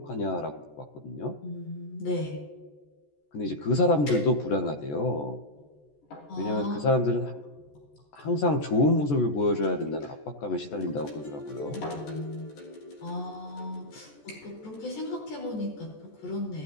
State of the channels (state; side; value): late; right; 14 ms